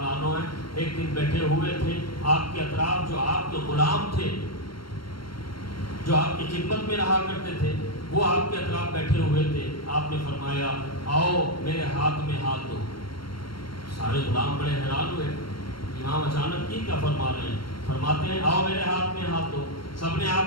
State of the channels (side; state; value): right; late; 0.73 ms